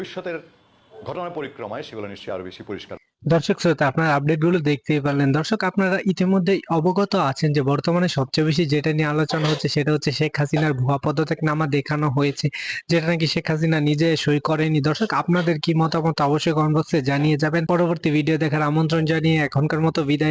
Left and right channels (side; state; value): both; identical; correlation 1.00